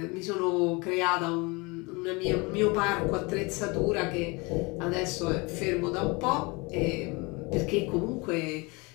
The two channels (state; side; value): quieter; right; 27.0 dB